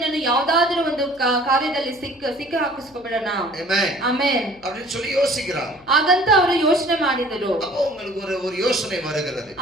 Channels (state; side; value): noise; left; hum, 28 dB below the sound